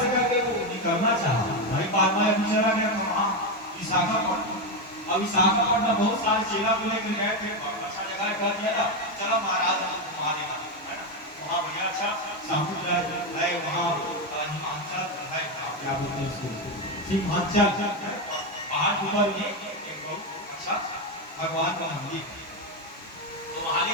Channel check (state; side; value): normal; both; correlation 0.09